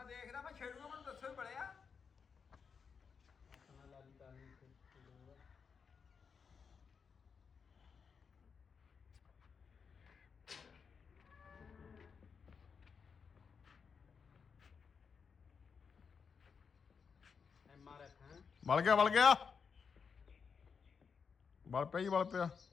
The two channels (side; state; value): right; quieter; 6.0 dB